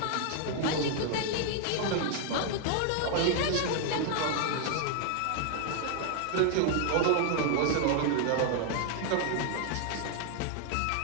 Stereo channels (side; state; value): both; different; correlation 0.00